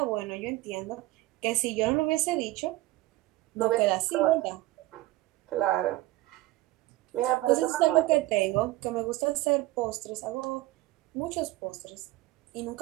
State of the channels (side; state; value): left; quieter; 17.9 dB